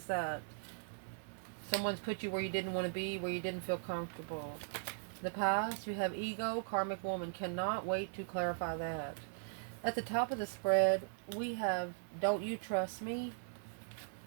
that? Someone's put you where you didn't want to be, where you didn't feel comfortable. The past, you have ego, karmic woman. Cannot wait to clarify that. At the top of the spread, we have don't you trust me?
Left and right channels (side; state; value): left; silent; 52 dB below the other